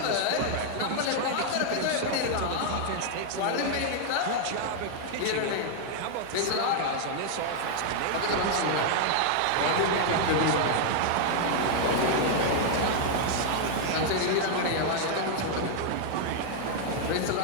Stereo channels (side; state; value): both; different; correlation 0.00